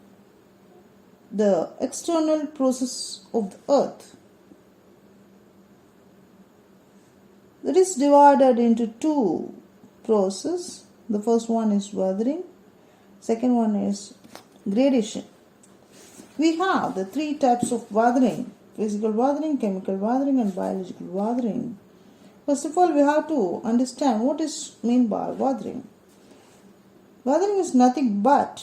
the external process of the earth. That is divided into two processes. The first one is weathering, second one is gradation. We have the three types of weathering: physical weathering, chemical weathering and biological weathering. First of all, we have to understand what is meant by weathering. Weathering is nothing but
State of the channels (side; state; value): both; identical; correlation 1.00